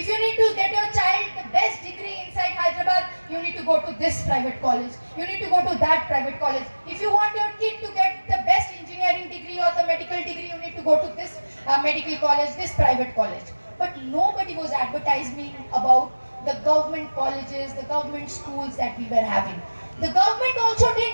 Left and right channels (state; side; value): inverted; both; correlation -1.00